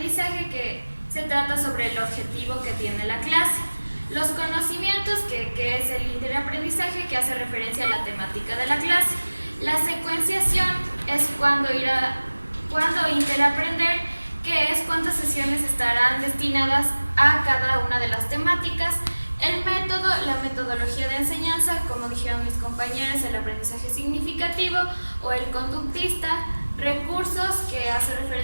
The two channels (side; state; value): both; inverted; correlation -1.00